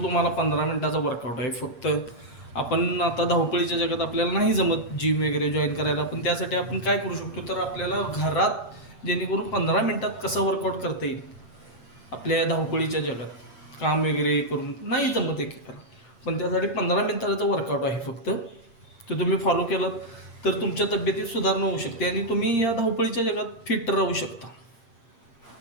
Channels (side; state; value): right; late; 8.7 ms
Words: तुम्हाला 15 मिनिटाचा वर्कआउट आहे. फक्त आपण आता धावपळीच्या जगात आपल्याला नाही जमत जिम वगैरे जॉईन करायला, पण त्यासाठी आपण काय करू शकतो, तर आपल्याला घरात जेणेकरून 15 मिनिटात कसं वर्कआउट करता येईल. आपल्या धावपळीच्या जगात काम वगैरे करून नाही जमत एकेकाला, पण त्यासाठी 15 मिनिटाचा वर्कआउट आहे फक्त. तो तुम्ही फॉलो केलात तर तुमच्या तब्येतीत सुधारणा होऊ शकते आणि तुम्ही या धावपळीच्या जगात फिट राहू शकता.